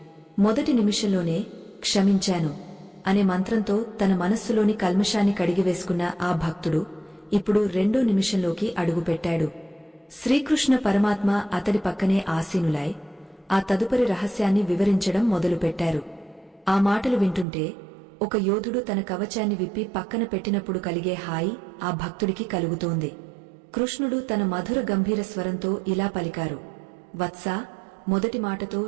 మొదటి నిమిషంలోనే క్షమించాను అనే మంత్రంతో తన మనస్సులోని కల్మషాన్ని కడిగివేసుకున్న ఆ భక్తుడు ఇప్పుడు రెండో నిమిషంలోకి అడుగుపెట్టాడు. శ్రీకృష్ణ పరమాత్మ అతడి పక్కనే ఆసీనులై ఆ తదుపరి రహస్యాన్ని వివరించడం మొదలుపెట్టారు. ఆ మాటలు వింటుంటే ఒక యోధుడు తన కవచాన్ని విప్పి పక్కన పెట్టినప్పుడు కలిగే హాయి ఆ భక్తుడికి కలుగుతోంది. కృష్ణుడు తన మధుర గంభీర స్వరంతో ఇలా పలికారు, వత్సా, మొదటి మాటతో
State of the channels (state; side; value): drops out; left; at 17.4 s